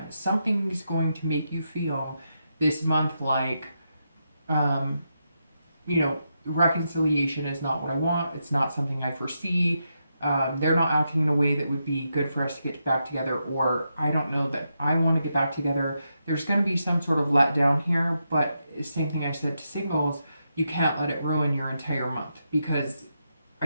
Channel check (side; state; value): both; inverted; correlation -0.84